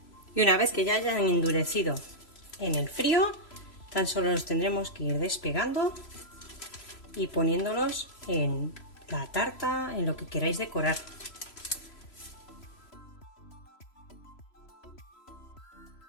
Y una vez que ya hayan endurecido en el frío, tan solo los tendremos que ir despegando y poniéndolos en la tarta, en lo que queráis decorar.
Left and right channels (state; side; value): late; right; 3.0 ms